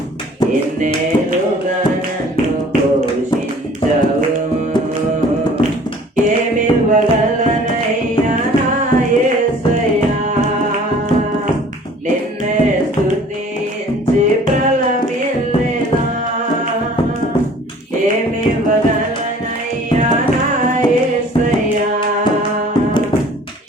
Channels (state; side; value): normal; both; correlation 0.51